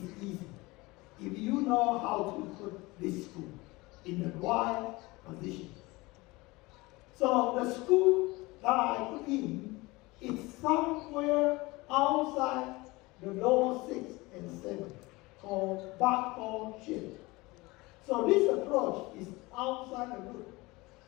easy. If you know how to put this screw in the right position. So the screw that I put in is somewhere outside the lower 6 and 7, called backward shear. So this approach is outside the root.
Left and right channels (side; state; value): right; quieter; 22.4 dB